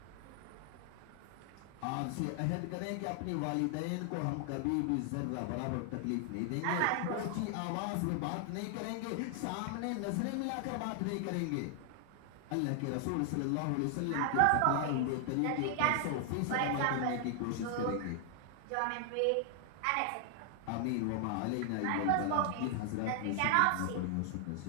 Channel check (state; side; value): different; both; correlation 0.00